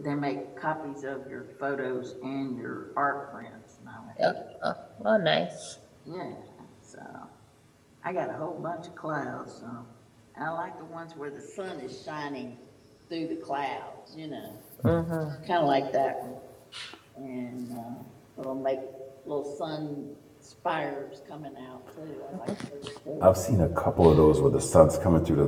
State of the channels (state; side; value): identical; both; correlation 1.00